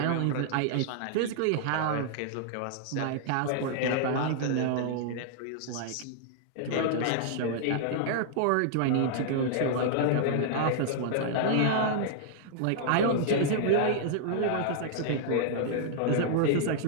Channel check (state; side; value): different; both; correlation -0.01